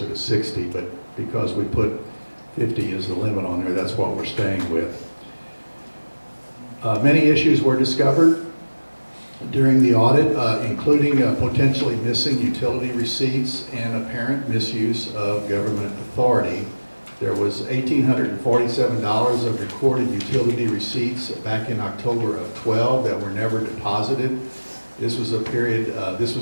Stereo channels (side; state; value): both; inverted; correlation -1.00